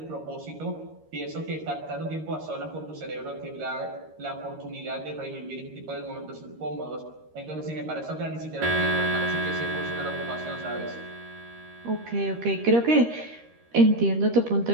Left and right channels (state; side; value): late; left; 13 ms